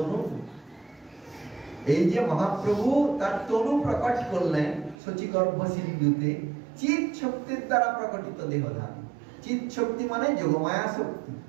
এই যে মহাপ্রভু তার তনু প্রকট করলেন শচীগর্ভ সিন্ধুতে চিৎ শক্তির দ্বারা প্রকটিত দেহধান। চিৎ শক্তি মানে যোগমায়া শক্তি,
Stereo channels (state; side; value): drops out; left; at 5.0 s